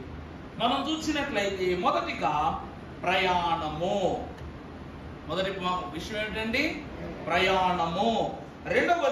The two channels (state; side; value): identical; both; correlation 1.00